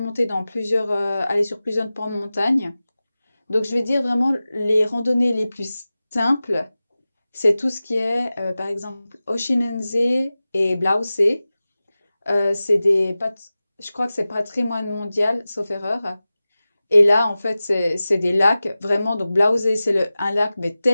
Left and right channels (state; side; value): inverted; both; correlation -0.96